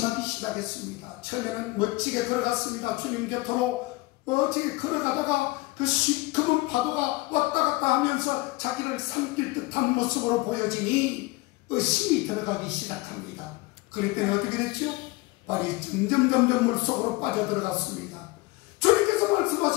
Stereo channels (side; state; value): right; quieter; 22.3 dB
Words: 시작했습니다. 처음에는 멋지게 걸어갔습니다. 주님 곁으로 멋지게 걸어가다가 그 시커먼 파도가 왔다 갔다 하면서 자기를 삼킬 듯한 모습으로 보여지니 의심이 들어가기 시작합니다. 그랬더니 어떻게 됐죠? 발이 점점 물속으로 빠져들어갔습니다. 주님께서